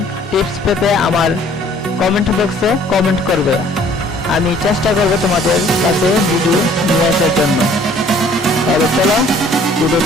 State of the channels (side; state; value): both; normal; correlation 0.56